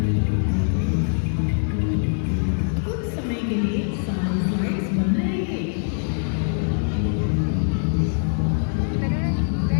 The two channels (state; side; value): silent; right; 63 dB below the other